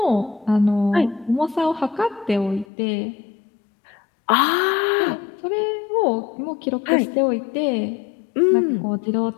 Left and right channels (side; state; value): right; drops out; at 2.7 s